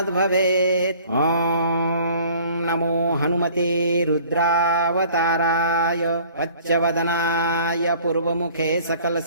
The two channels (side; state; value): both; inverted; correlation -0.51